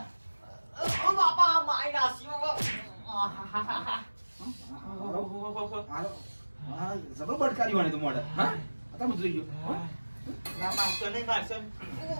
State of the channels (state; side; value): inverted; both; correlation -1.00